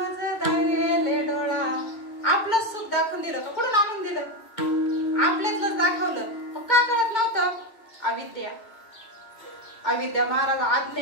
दावेले डोळा. आपलं सुख दाखवून दिलं का? कुठून आणून दिलं? आपल्यातलंच दाखवलं. मग का कळत नव्हतं? अविद्या, अविद्या महाराज.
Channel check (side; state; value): right; late; 2.2 ms